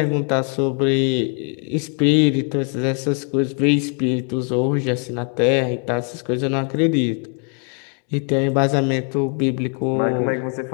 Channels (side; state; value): right; quieter; 39.3 dB